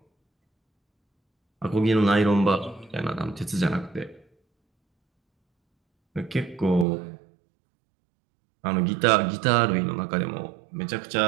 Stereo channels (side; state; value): left; drops out; at 6.9 s